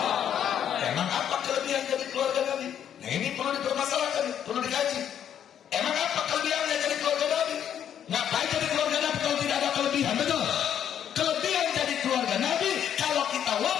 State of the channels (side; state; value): right; quieter; 9.4 dB